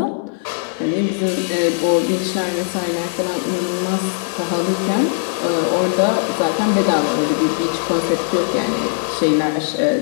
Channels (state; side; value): silent; right; digital silence